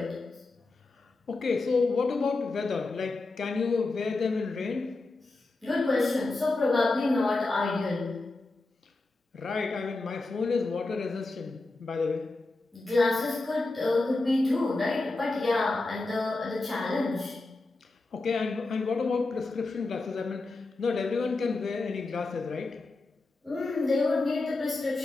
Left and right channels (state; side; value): quieter; right; 3.3 dB